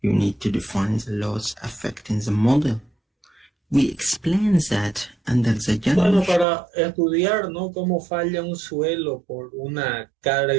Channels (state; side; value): drops out; left; at 6.5 s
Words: you need to define the laws affecting the model. We explain that under the general... Bueno, para estudiar, ¿no?, cómo falla un suelo por una